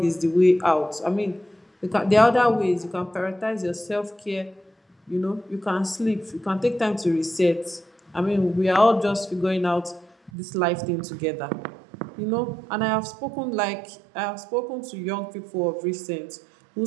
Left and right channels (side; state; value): left; drops out; at 10.3 s